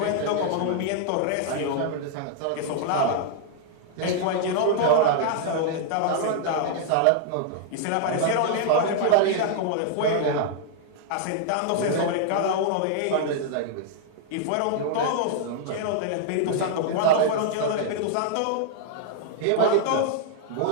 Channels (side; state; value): both; different; correlation -0.01